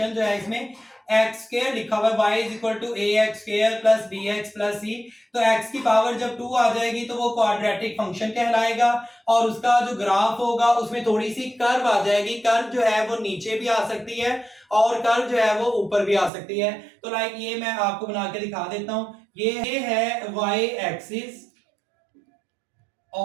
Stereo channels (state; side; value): drops out; left; at 16.3 s